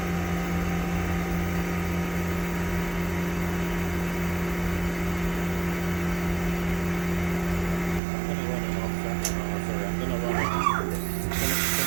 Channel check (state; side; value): drops out; left; at 8.0 s